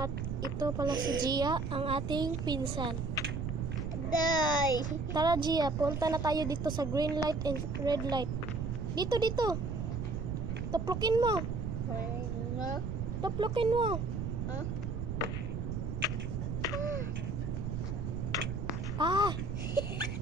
ito pala si Gia, ang ating pinsan. Day. Tara Gia, punta na tayo dito sa green light and red light. Dito. Tuplukin mo. Ano? Tuplukin mo. Huh? Ah!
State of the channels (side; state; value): right; noise; rumble, 2 dB below the sound